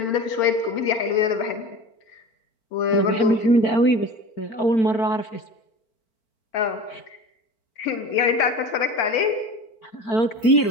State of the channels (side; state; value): right; late; 4.5 ms